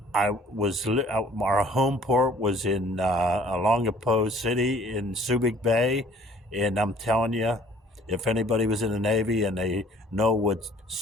our home port was in Olongapo City in Subic Bay. And I'm telling you, if anybody was in the Navy and they know what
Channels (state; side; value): normal; both; correlation 0.54